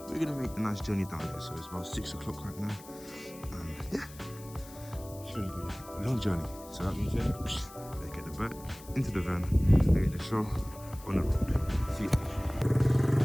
we're going to make a nice journey down there. So it's about 6 o'clock right now and yeah, it's going to be a long journey. So that means let's get the bike into the van and get the show on the road. See you.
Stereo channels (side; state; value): left; noise; hiss, 19 dB below the sound